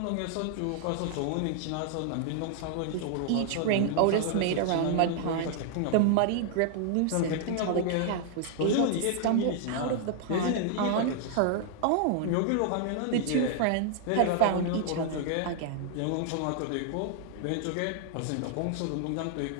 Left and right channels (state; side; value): different; both; correlation 0.00